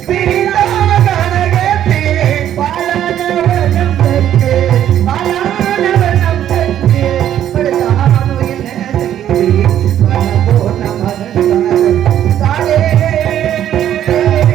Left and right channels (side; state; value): left; quieter; 10.9 dB